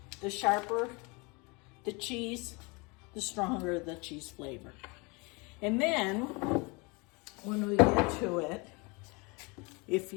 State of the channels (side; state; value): right; quieter; 28.5 dB